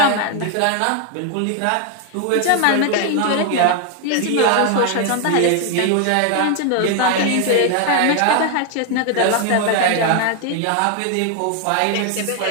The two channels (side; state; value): both; different; correlation 0.01